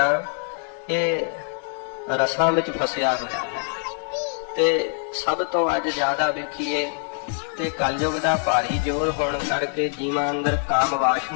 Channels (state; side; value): silent; right; 56 dB below the other